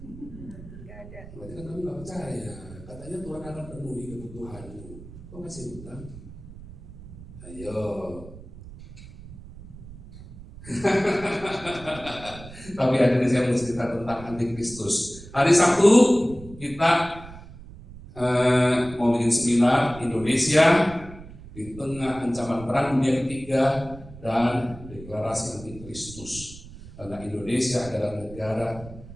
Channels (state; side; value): noise; right; rumble, 16 dB below the sound